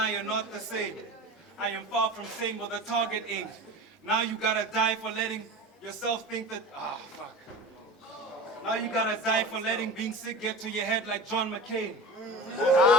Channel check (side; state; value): both; normal; correlation 0.33